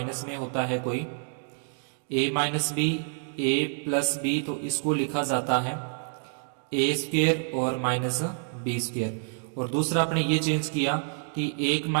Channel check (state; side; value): silent; left; 56 dB below the other